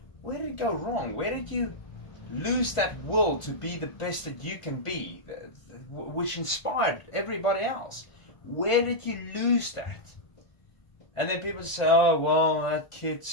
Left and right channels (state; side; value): late; right; 1.4 ms